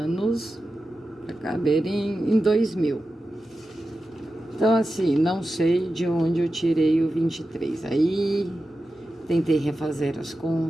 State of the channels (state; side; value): normal; both; correlation 0.92